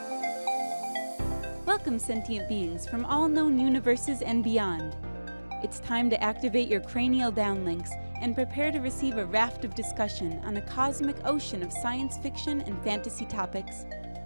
Welcome, sentient beings from all known universes and beyond. It's time to activate your cranial downlinks and prepare to receive a raft of discussion on a cosmic ocean of science fiction and fantasy topics,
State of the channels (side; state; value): both; inverted; correlation -1.00